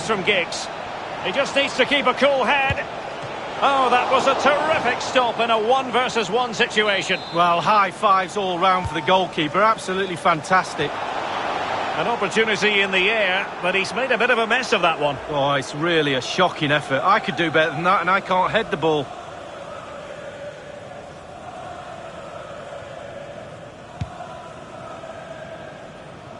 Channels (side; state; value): both; identical; correlation 1.00